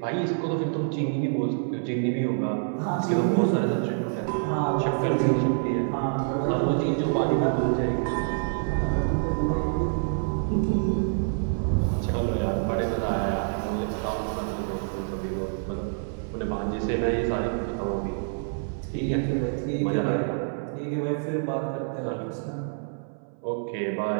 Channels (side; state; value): left; silent; 59 dB below the other